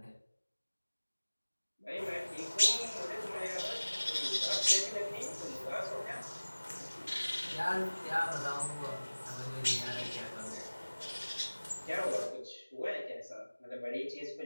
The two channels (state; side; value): inverted; both; correlation -1.00